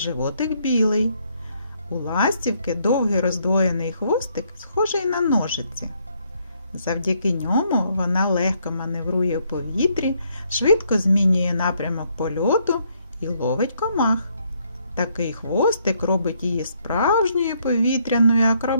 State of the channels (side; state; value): both; inverted; correlation -0.71